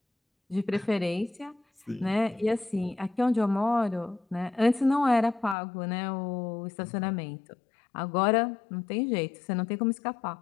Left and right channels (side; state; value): right; drops out; at 5.6 s